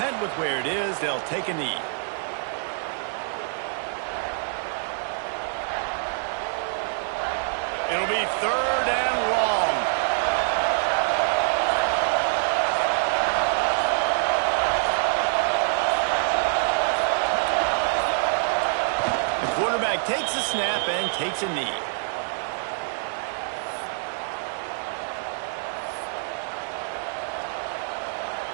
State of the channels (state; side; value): silent; left; digital silence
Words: with where it is. They'll take a knee. It'll be 3rd and long. The quarterback takes a snap and takes a knee.